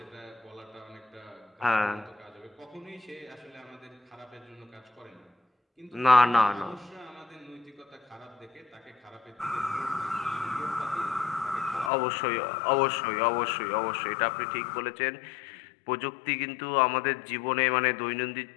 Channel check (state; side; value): drops out; right; at 11.9 s